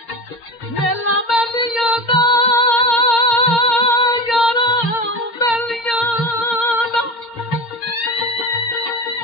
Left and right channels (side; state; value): right; late; 4.3 ms